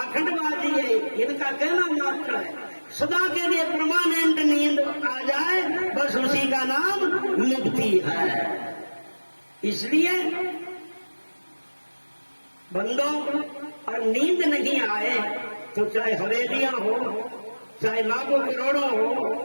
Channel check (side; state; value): both; inverted; correlation -1.00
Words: है, इनका कहना मात्र है। सदा के लिए परमानेंट नींद आ जाए, बस उसी का नाम मुक्ति है। इसलिए बंदों, और नींद नहीं आए तो चाहे हवेलियां हो, चाहे लाखों करोड़ों हो,